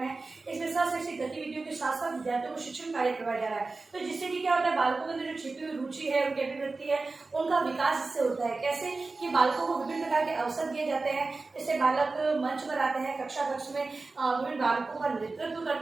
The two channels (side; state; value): left; quieter; 3.7 dB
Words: इसमें शैक्षिक गतिविधियों के साथ साथ विद्यार्थियों को शिक्षण कार्य करवाया जा रहा है। तो जिससे कि क्या होता है बालकों के अंदर जो छिपी हुई रुचि है उनकी अभिव्यक्ति है उनका विकास इससे होता है। कैसे कि बालकों को विभिन्न प्रकार के अवसर दिए जाते हैं, इससे बालक मंच पर आते हैं, कक्षा कक्ष में विभिन्न बालकों का नेतृत्व